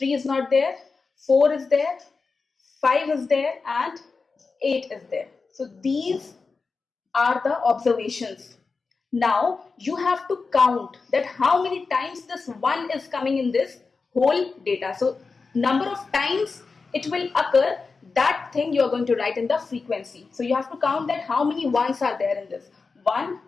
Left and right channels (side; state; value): right; quieter; 4.4 dB